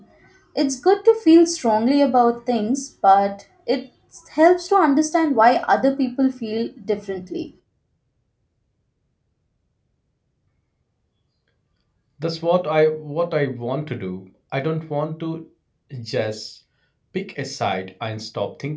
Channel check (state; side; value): identical; both; correlation 1.00